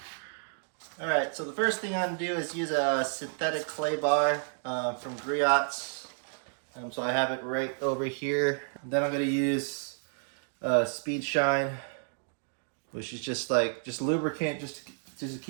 Alright, so the first thing I'm going to do is use a synthetic clay bar from Griots. So I have it right over here. Then I'm going to use Speed Shine, which is just lubricant just to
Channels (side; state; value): left; silent; digital silence